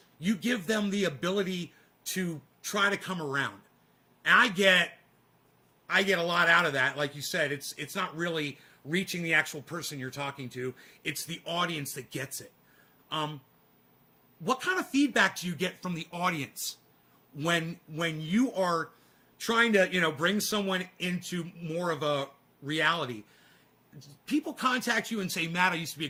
you give them the ability to try to come around. And I get a lot out of that. Like you said, it's not really reaching the actual person you're talking to. It's the audience that gets it. What kind of feedback do you get from the audience when you are trying to, bring someone into more of a reality? People contact you and say, Matt, I used to be a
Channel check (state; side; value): identical; both; correlation 1.00